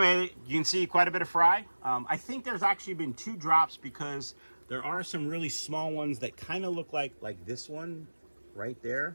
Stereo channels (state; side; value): inverted; both; correlation -1.00